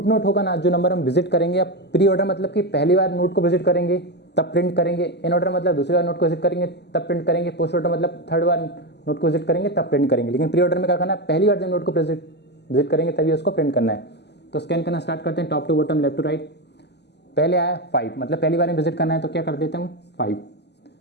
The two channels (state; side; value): late; right; 0.50 ms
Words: नोट होगा ना, जो नंबर हम विजिट करेंगे, आप प्री ऑर्डर मतलब कि पहली बार नोट को विजिट करेंगे तब प्रिंट करेंगे, इन ऑर्डर मतलब दूसरी बार नोट को विजिट करेंगे तब प्रिंट करेंगे, पोस्ट ऑर्डर मतलब थर्ड बार नोट को विजिट करेंगे तब प्रिंट करेंगे। लेकिन प्री ऑर्डर में क्या करना है, पहली बार जब नोट को विजिट करेंगे तभी उसको प्रिंट करना है। तो स्कैन करना स्टार्ट करते हैं, top to bottom, left to right. पहले आया 5, मतलब पहली बार में विजिट करना है तो क्या कर देते हैं हम 5।